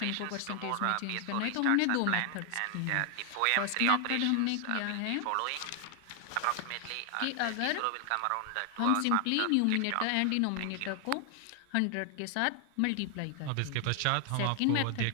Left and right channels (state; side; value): different; both; correlation 0.00